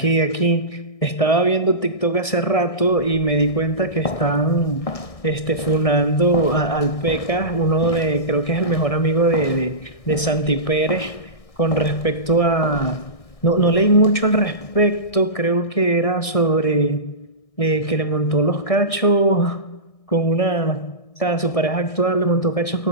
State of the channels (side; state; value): right; late; 1.6 ms